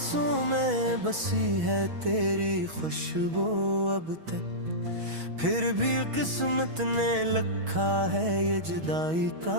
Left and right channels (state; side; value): late; left; 6.2 ms